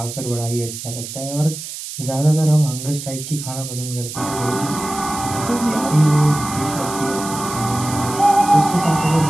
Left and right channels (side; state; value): right; noise; hiss, 9 dB below the sound